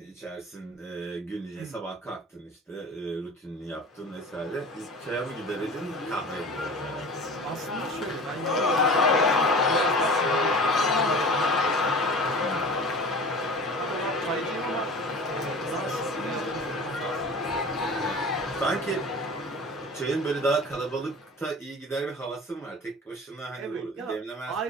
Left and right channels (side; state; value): both; normal; correlation 0.38